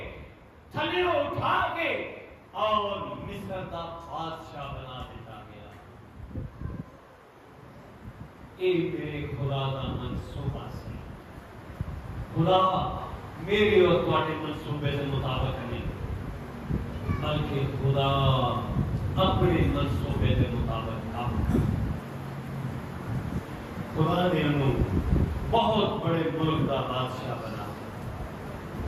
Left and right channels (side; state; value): both; identical; correlation 1.00